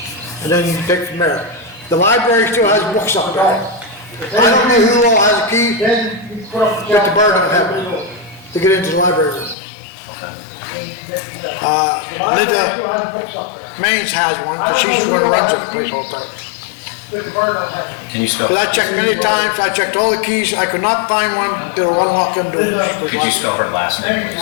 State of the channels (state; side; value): drops out; right; at 9.6 s